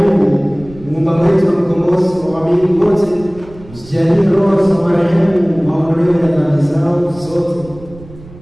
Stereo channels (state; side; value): noise; right; rumble, 19 dB below the sound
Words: Muumba wetu na mkombozi wa waamini wote, usijalie roho za marehemu maondoleo ya dhambi zao zote,